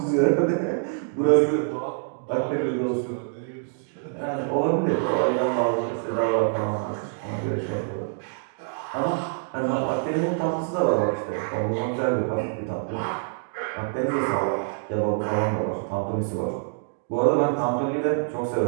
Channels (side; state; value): left; silent; digital silence